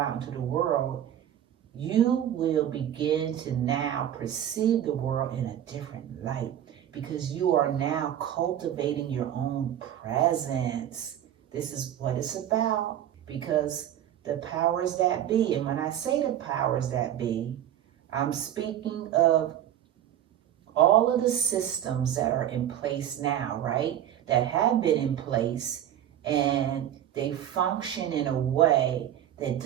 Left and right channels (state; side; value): quieter; left; 11.0 dB